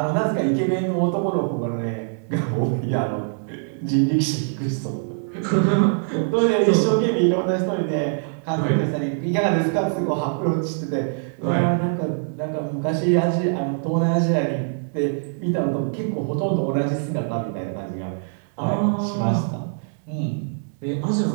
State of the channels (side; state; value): left; silent; 63 dB below the other